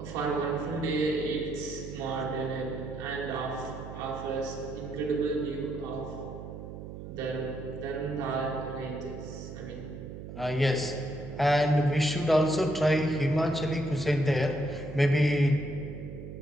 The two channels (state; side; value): noise; right; hum, 10 dB below the sound